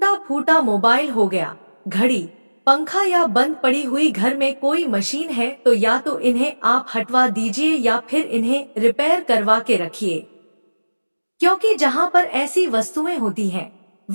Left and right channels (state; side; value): inverted; both; correlation -1.00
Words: फूटा मोबाइल हो गया, घड़ी, पंखा या बंद पड़ी हुई घर में कोई मशीन है तो या तो इन्हें आप हटवा दीजिए या फिर इन्हें रिपेयर करवा के रखिए। क्योंकि जहाँ पर ऐसी वस्तुएं होती हैं,